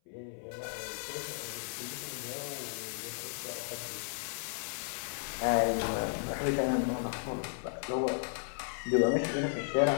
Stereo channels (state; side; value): silent; right; 55 dB below the other